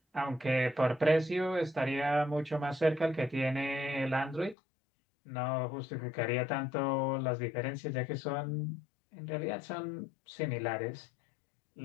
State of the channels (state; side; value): drops out; right; at 4.5 s